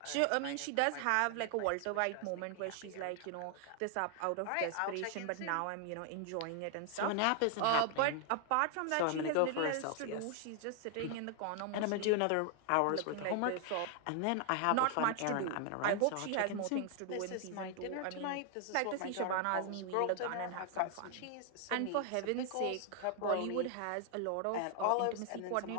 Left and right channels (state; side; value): different; both; correlation 0.00